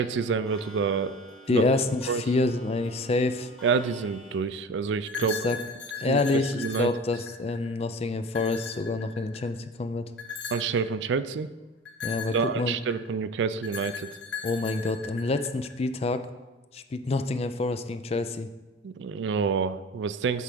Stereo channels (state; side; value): normal; both; correlation 0.37